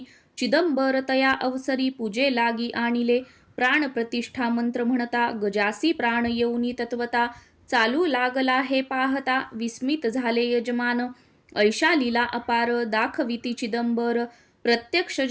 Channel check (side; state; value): both; identical; correlation 1.00